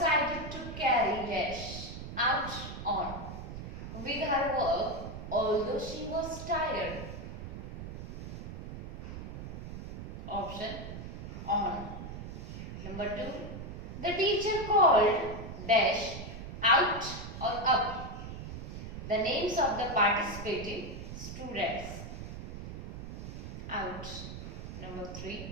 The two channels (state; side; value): noise; right; rumble, 9 dB below the sound